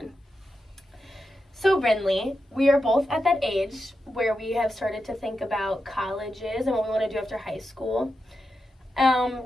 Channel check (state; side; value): normal; both; correlation 0.88